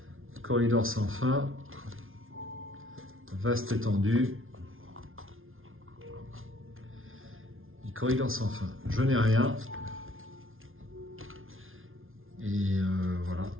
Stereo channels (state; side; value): late; left; 0.60 ms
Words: Corridor sans fin. Vaste étendue. Et corridor sans fin. Je n'ai rien. Et voilà.